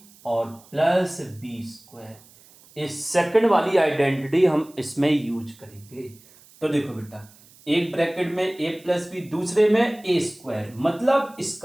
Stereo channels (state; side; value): noise; right; hiss, 26 dB below the sound